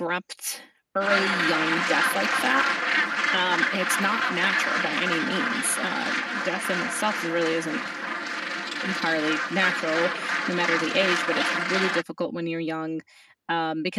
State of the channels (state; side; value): identical; both; correlation 1.00